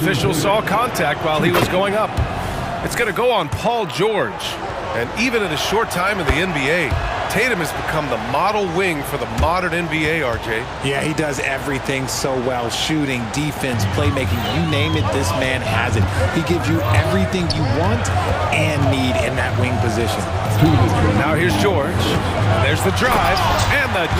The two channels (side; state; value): both; identical; correlation 1.00